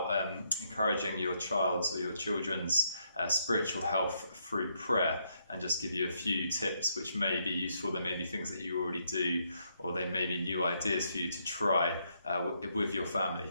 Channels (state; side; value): inverted; both; correlation -0.75